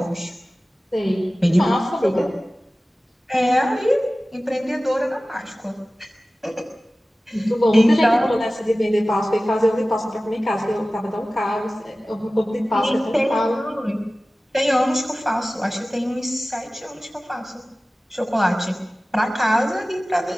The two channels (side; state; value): both; normal; correlation 0.97